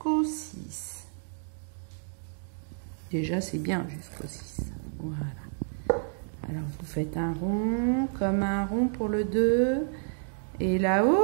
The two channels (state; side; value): silent; left; digital silence